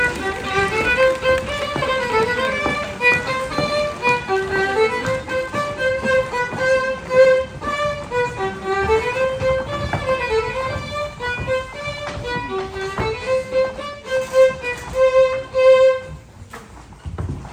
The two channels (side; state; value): both; identical; correlation 1.00